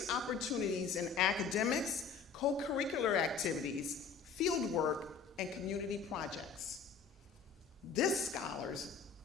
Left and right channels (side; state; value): right; quieter; 5.8 dB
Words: opportunities in academics, co-curricular activities, field work, and community projects. This scholars